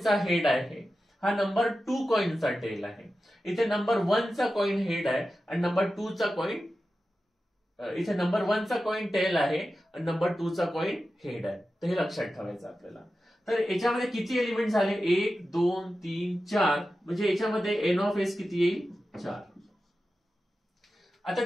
हेड आहे, हा नंबर 2 कॉइनचा टेल आहे. इथे नंबर 1 चा कॉइन हेड आहे आणि नंबर 2 चा कॉइन, इथे नंबर 1 चा कॉइन टेल आहे आणि नंबर 2 चा कॉइन हेड आहे. तर हे लक्षात ठेवायचं आपल्याला. तर याच्यामध्ये किती एलिमेंट झाले, 1 2 3 4, म्हणजे याच्यामध्ये एन ऑफ एस किती येईल, 4. आता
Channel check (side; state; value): both; normal; correlation 0.93